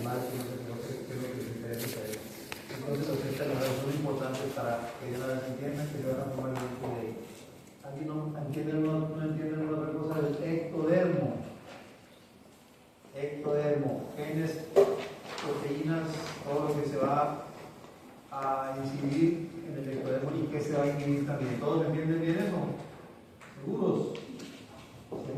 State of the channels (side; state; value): both; identical; correlation 1.00